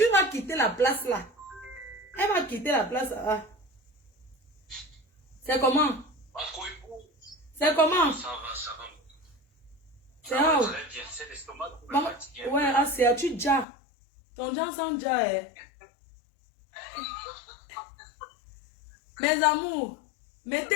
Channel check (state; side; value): drops out; right; at 13.7 s